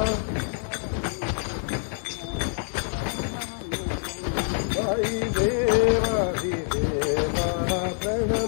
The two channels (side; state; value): right; silent; digital silence